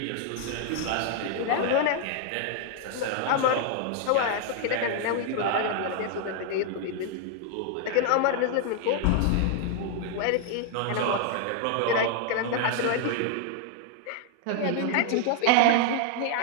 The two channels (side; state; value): both; different; correlation 0.00